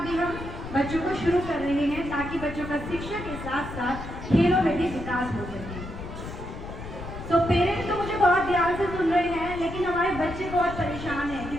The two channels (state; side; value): noise; left; rumble, 10 dB below the sound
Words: भी हम बच्चों को शुरू कर रहे हैं, ताकि बच्चों का शिक्षा के साथ साथ खेलों में भी विकास हो सके। तो पेरेंट्स तो मुझे बहुत ध्यान से सुन रहे हैं, लेकिन हमारे बच्चे बहुत परेशान हैं